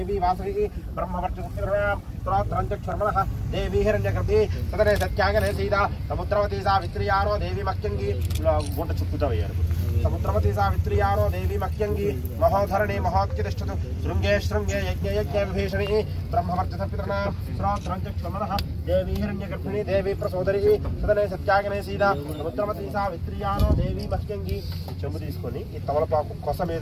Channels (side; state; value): both; identical; correlation 1.00